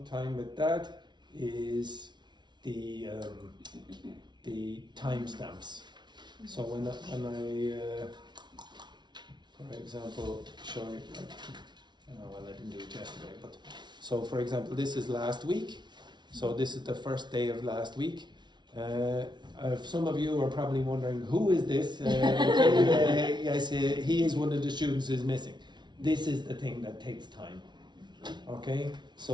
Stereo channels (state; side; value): late; left; 0.21 ms